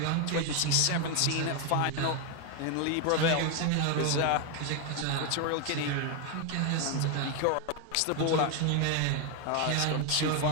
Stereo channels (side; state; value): both; different; correlation 0.01